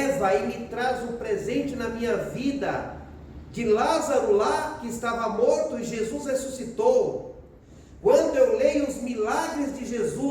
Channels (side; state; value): both; identical; correlation 1.00